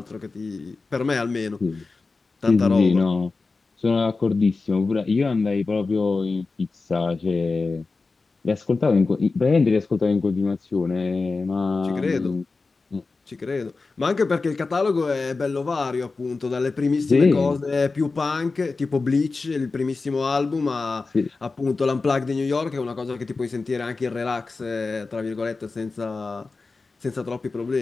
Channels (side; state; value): right; quieter; 4.0 dB